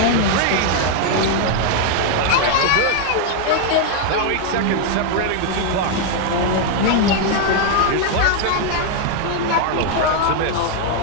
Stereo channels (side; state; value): both; different; correlation 0.00